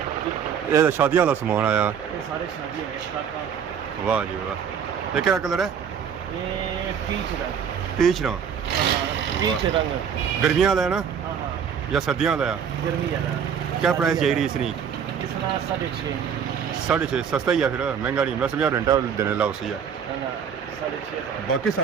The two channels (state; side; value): quieter; left; 7.5 dB